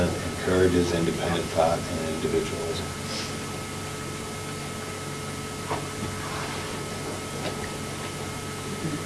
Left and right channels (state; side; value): identical; both; correlation 1.00